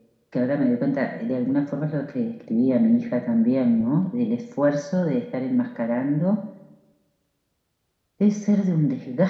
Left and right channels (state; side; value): identical; both; correlation 1.00